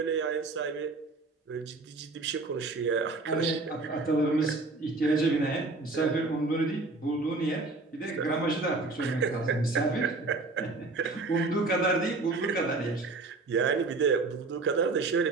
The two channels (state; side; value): quieter; left; 3.5 dB